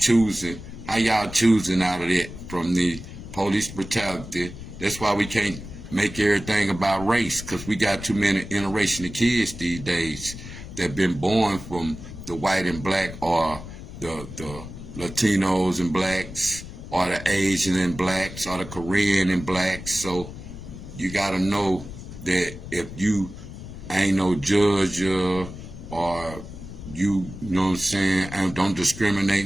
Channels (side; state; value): left; noise; rumble, 12 dB below the sound